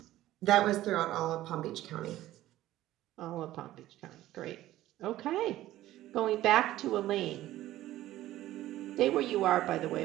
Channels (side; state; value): left; quieter; 14.8 dB